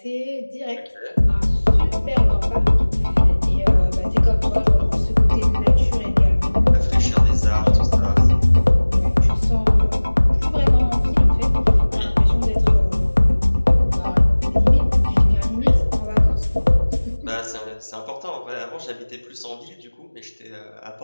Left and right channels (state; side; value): inverted; both; correlation -1.00